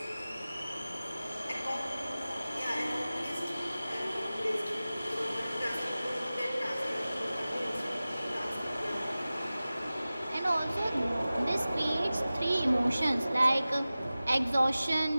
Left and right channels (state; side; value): inverted; both; correlation -0.97